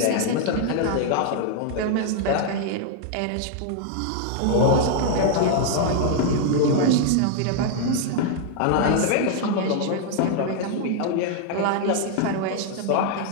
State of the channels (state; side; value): different; both; correlation 0.00